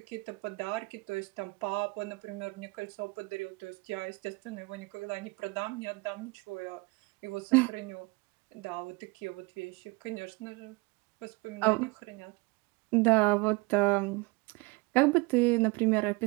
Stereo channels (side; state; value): left; quieter; 25.4 dB